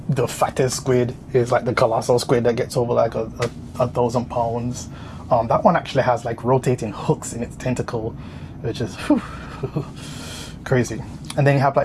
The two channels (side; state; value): both; identical; correlation 1.00